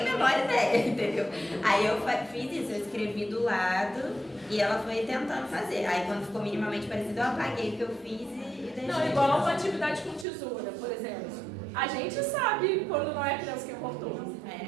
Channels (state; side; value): drops out; left; at 10.2 s